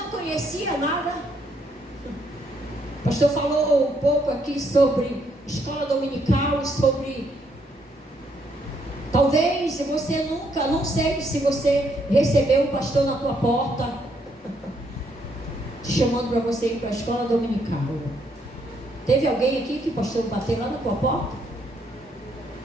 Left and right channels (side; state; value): both; normal; correlation 0.72